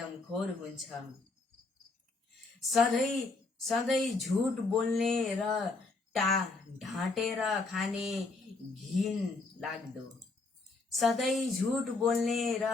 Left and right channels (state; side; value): quieter; right; 3.6 dB